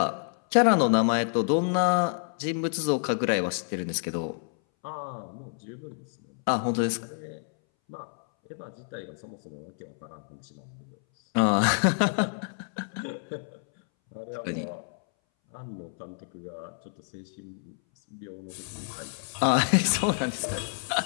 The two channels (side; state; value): right; silent; 59 dB below the other